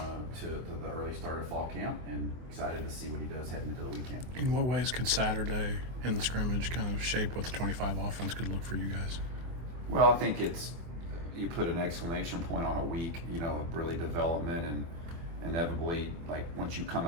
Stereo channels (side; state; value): left; late; 24 ms